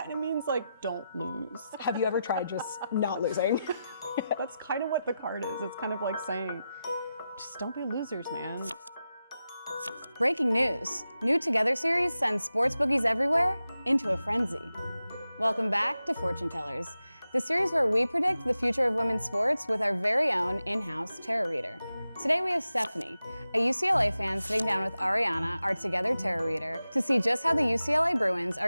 of means like don't lose. Have you ever tried just not losing? That's kind of what the card is. It's kind of like saying, just don't be losers, man. Breaking news. New Togethxr series sends sports bookies everywhere into a frenzy. Welcome back to Fortune Tellers, the series where we predict the future of women's sports with our very own in-house tarot reader. Today we have Stephanie, a UCLA fan, sitting down with Arianna, our Togethxr tarot reader, to see just how the UCLA Bruins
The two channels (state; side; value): inverted; both; correlation -0.91